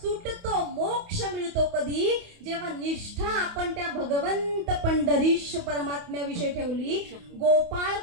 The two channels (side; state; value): left; late; 28 ms